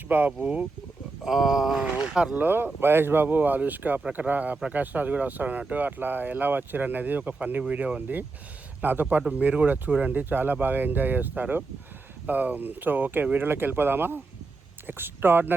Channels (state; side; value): quieter; left; 3.7 dB